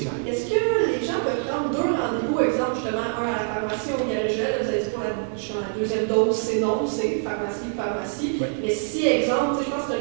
clair. Est-ce que les gens peuvent prendre deux rendez-vous, exemple, justement, un à la pharmacie ou au Garigel, vous avez dit pour la deuxième dose, c'est non, c'est pharmacie. Oui. Mais si, exemple, je pense que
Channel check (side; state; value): left; silent; digital silence